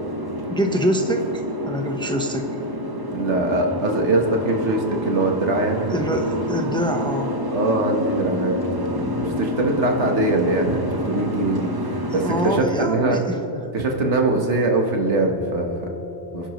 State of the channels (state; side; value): normal; both; correlation 0.00